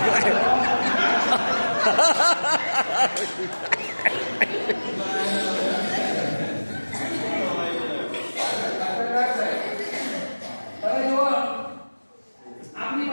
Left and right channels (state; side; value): inverted; both; correlation -1.00